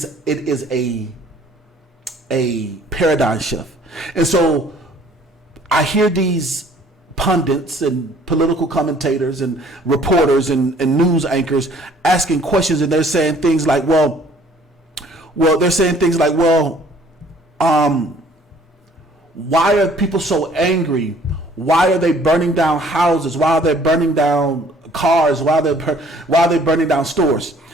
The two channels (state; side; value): normal; both; correlation 0.57